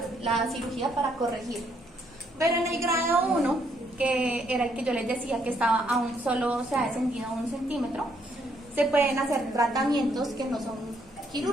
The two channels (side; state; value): both; normal; correlation 0.71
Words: la cirugía para corregirlo. Pero en el grado 1, que era el que yo les decía que estaba aún solo, se ha descendido a 1 centímetro, se pueden hacer tratamientos que no son